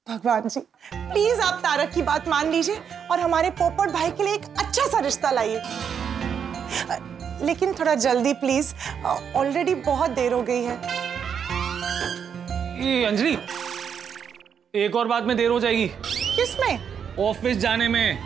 भगवान जी, प्लीज आप तारक की बात मान लीजिए और हमारे पोपट भाई के लिए एक अच्छा सा रिश्ता लाइए, लेकिन थोड़ा जल्दी प्लीज, ऑलरेडी बहुत देर हो गई है। ये अंजलि, एक और बात में देर हो जाएगी। किसमें? ऑफिस जाने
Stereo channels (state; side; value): quieter; left; 7.5 dB